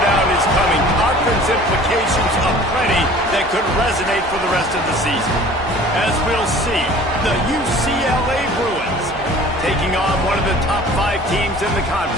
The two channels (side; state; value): both; normal; correlation 0.47